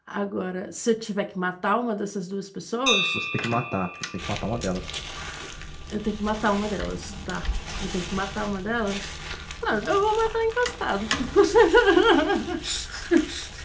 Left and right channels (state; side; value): identical; both; correlation 1.00